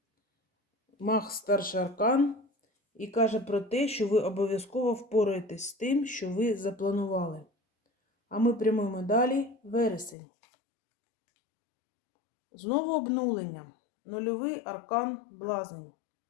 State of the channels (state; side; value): drops out; right; at 10.2 s